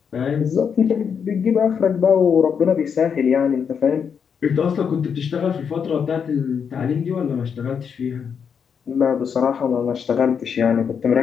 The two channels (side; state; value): right; quieter; 6.9 dB